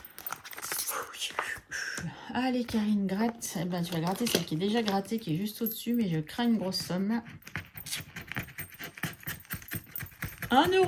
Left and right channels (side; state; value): both; identical; correlation 1.00